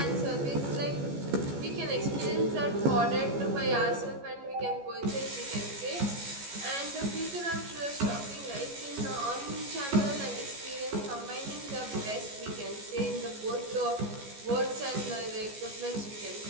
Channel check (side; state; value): left; late; 14 ms